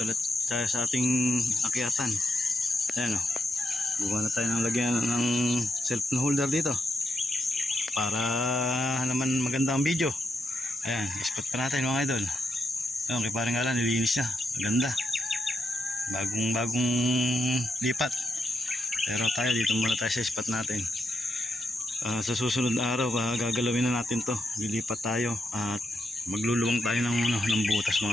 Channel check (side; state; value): both; normal; correlation 0.82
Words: ulit tayo sa ating akyatan. Ayan o. Buka na tayo ng lagyan ng cellphone holder dito. Para naman maganda ang video. Ayan, spot pa natin mga idol. Ayan, kay parang Alan, nilinis niya. Maganda. Bagong lipat. Pero tayo dito muna tayo sa spot natin. Sa susunod na araw, gagalawin na natin to. Lilipat tayo at magluluwang tayo ng butas